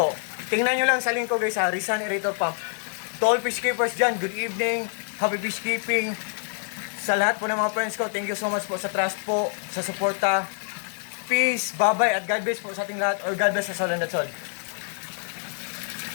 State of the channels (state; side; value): silent; right; 61 dB below the other